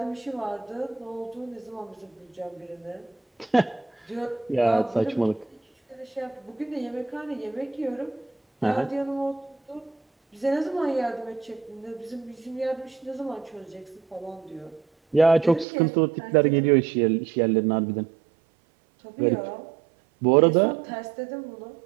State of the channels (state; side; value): drops out; left; at 15.7 s